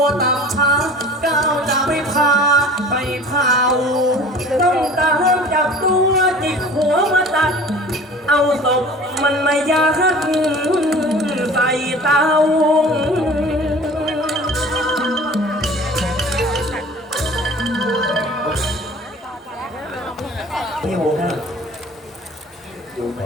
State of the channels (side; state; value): both; normal; correlation 0.43